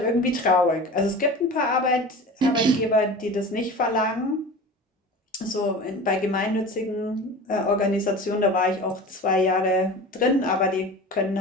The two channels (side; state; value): both; normal; correlation 0.35